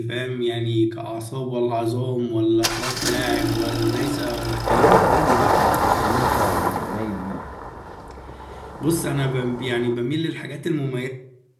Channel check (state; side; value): identical; both; correlation 1.00